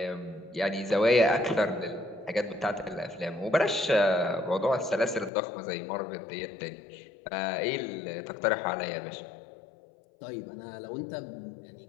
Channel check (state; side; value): drops out; right; at 5.3 s